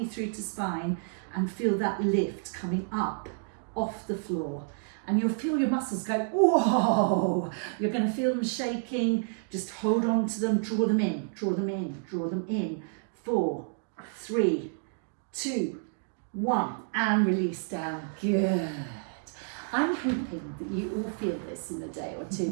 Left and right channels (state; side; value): silent; left; digital silence